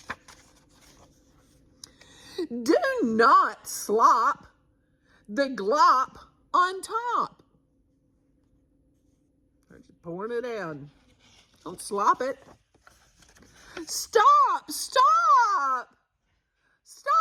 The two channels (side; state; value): both; identical; correlation 1.00